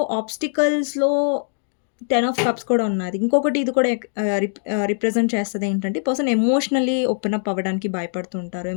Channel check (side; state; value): right; silent; digital silence